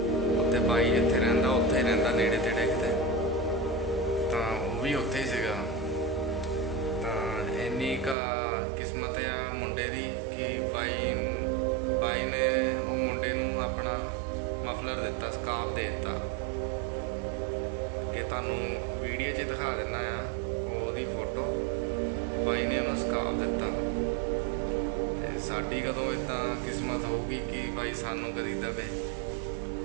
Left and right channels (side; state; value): left; drops out; at 8.2 s